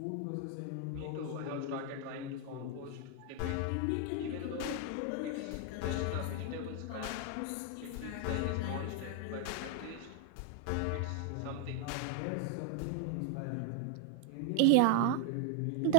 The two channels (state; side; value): different; both; correlation 0.00